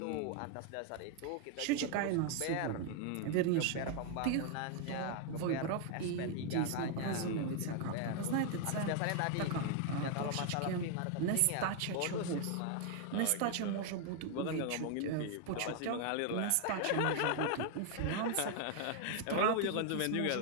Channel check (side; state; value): both; different; correlation 0.00